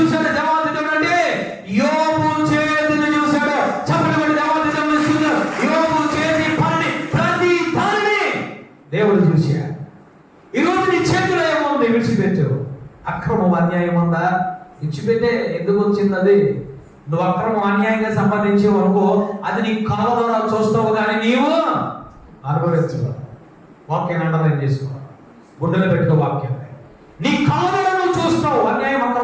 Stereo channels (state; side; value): identical; both; correlation 1.00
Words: దేవాది దేవుడు అంటే? యోబు చేతిని చూశాడు. చప్పట్లు దేవాది దేవుడు. యోబు చేతి పనిని ప్రతి దానిని దేవుడు చూశాడు. ఈరోజు నీ చేతిలో ఏముంది? విడిచిపెట్టు. అక్రమం అన్యాయం ఉందా? విడిచిపెట్టే. ఎందుకు వచ్చింది అది? నువ్వు అక్రమం అన్యాయంగా సంపాదించేవు అనుకో, అది నీ కళ్ళ ద్వారా చూస్తావు కానీ నీవు అనుభవించవు. వాక్యాన్ని అండర్లైన్ చేసుకో, గుండెలో పెట్టుకో వాక్యాన్ని. నీ కళ్ళ ద్వారా నువ్వు చూస్తావు అన్యాయం